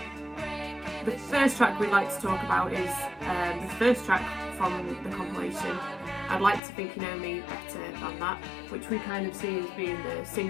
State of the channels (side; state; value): right; drops out; at 6.6 s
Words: The first track we'd like to talk about is the first track from the compilation, I'd Like to Think You Know Me Better Than That, which we kind of see as being the